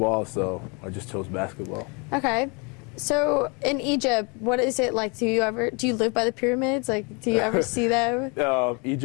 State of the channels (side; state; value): right; quieter; 31.8 dB